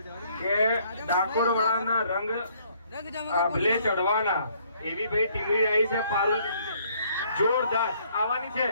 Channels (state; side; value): inverted; both; correlation -0.64